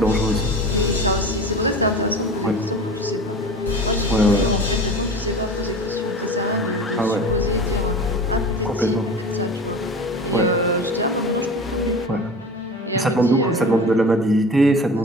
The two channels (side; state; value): both; normal; correlation 0.35